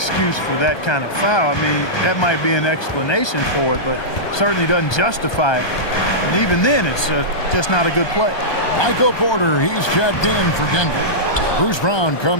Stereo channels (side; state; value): right; late; 1.2 ms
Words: for that kind of foul. I mean, that might be an explanation for it, but certainly doesn't justify it. And even then, it's just not a good play. Michael Porter, he's checked in for Denver. Bruce Brown